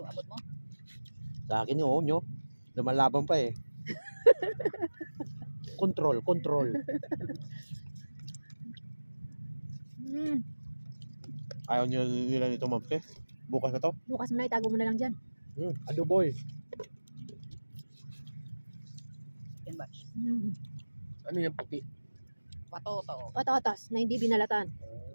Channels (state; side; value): inverted; both; correlation -1.00